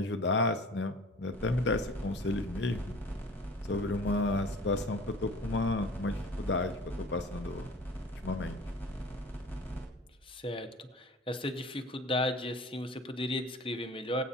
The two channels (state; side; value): normal; both; correlation 0.43